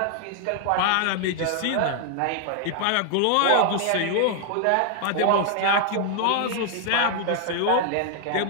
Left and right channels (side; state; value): both; different; correlation 0.00